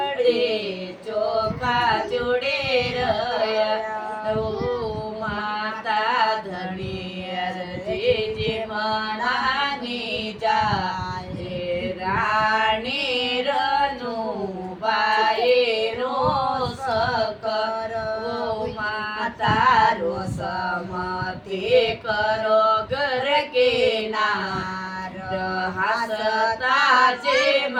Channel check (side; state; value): both; identical; correlation 1.00